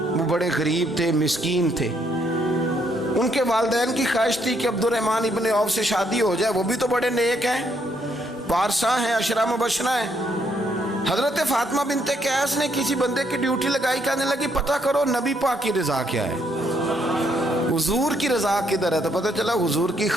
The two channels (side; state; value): both; normal; correlation 0.72